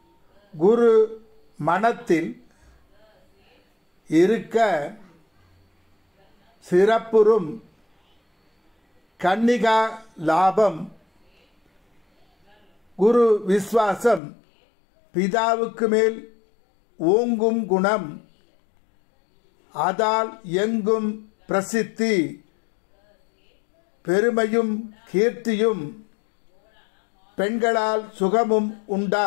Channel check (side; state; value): right; drops out; at 14.2 s